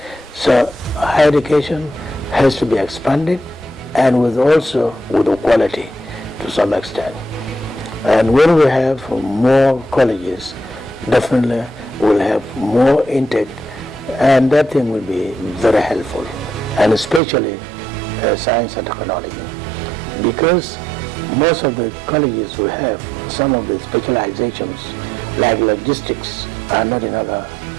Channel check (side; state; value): left; drops out; at 17.2 s